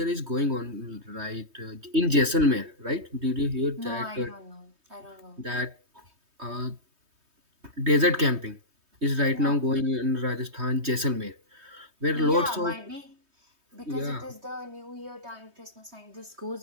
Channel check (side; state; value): left; late; 3.2 ms